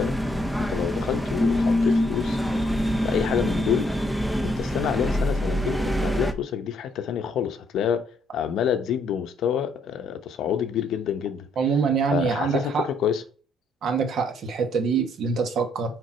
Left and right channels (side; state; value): both; normal; correlation 0.69